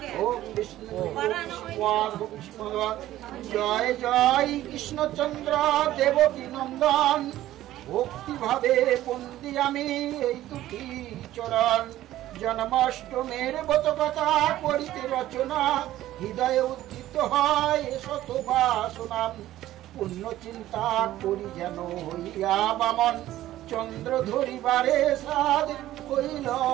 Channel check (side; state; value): left; quieter; 14.3 dB